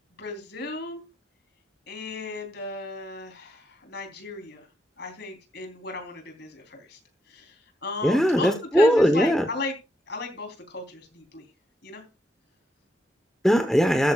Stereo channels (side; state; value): both; normal; correlation 0.82